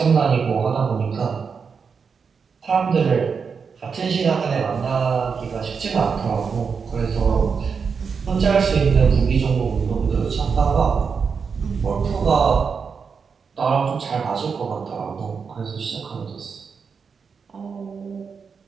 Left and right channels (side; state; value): left; quieter; 5.8 dB